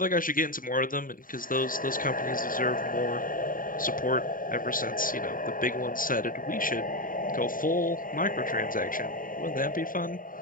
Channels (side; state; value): right; late; 0.40 ms